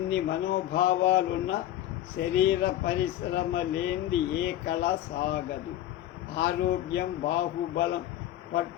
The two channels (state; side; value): quieter; right; 13.1 dB